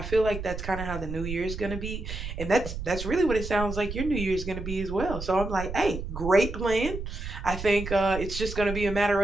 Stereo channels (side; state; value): right; noise; rumble, 7 dB below the sound